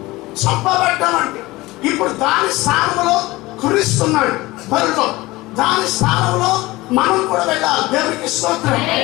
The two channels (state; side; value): quieter; right; 20.0 dB